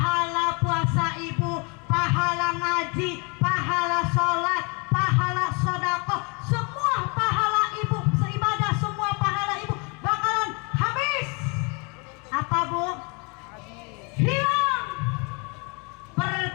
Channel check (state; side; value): quieter; right; 32.1 dB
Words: puasa ibu, pahala ngaji, pahala sholat, pahala sodakoh, semua pahala ibu, seibadah semua pahala ibu bakalan habis. Apa bu? Hilang.